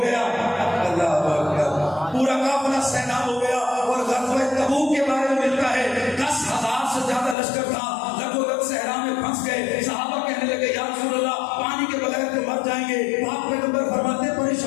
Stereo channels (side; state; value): right; drops out; at 7.4 s